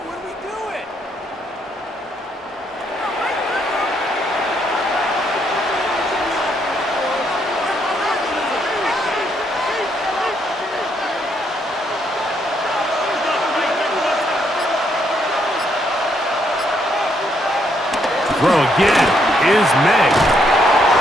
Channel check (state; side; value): normal; both; correlation 0.74